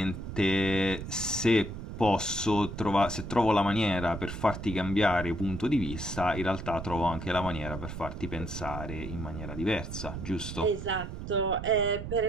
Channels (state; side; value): noise; right; rumble, 8 dB below the sound